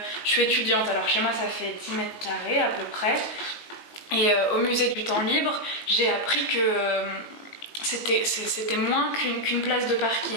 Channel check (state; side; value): late; right; 19 ms